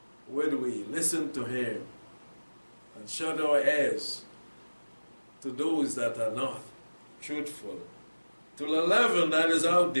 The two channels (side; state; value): both; inverted; correlation -1.00